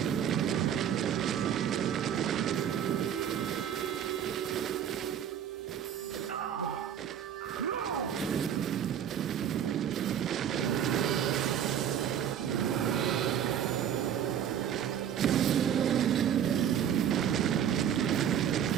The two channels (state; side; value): quieter; left; 9.3 dB